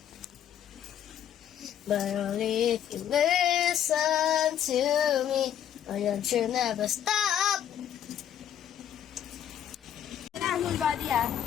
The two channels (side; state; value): right; quieter; 9.9 dB